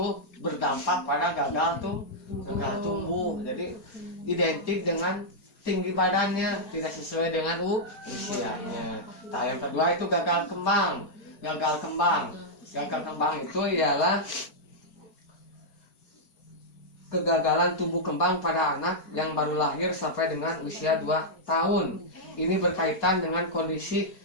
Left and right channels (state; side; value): late; right; 4.3 ms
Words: berdampak pada gagal tumbuh. Jadi identik dengan tinggi badannya tidak sesuai dengan usianya. Nah, yang kedua itu gagal kembang. Gagal kembang itu ialah kegagalan tumbuh kembang pada anak yang baru lahir sampai dengan usia 2 tahun. Ini berkaitan dengan kondisi